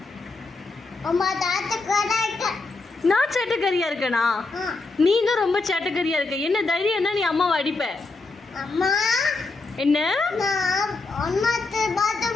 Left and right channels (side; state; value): right; quieter; 3.6 dB